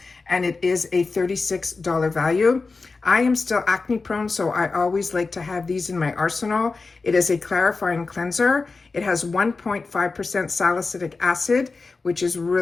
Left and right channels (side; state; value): right; quieter; 4.1 dB